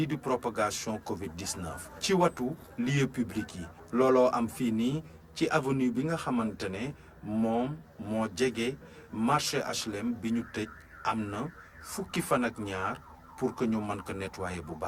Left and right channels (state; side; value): identical; both; correlation 1.00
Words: di propagation Covid 19 ci watu lieu public yi. looloo am fii nii ci avenue bi nga xamante ne moom moo jege marché HLM bi ñu tëj am na fukki fan ak ñaar pour que ñu mën ko nettoyer bu